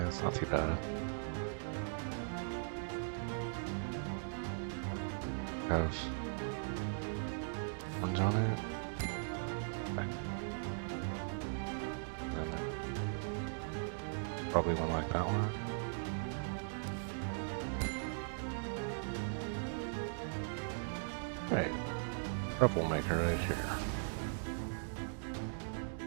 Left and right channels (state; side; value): silent; left; digital silence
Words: it's not too bad. Have orange on it. Okay. And then probably one like that one. Right, troublemaker right here.